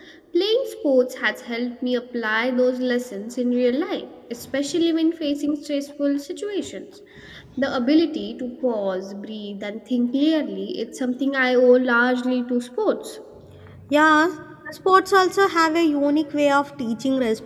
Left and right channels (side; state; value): both; identical; correlation 1.00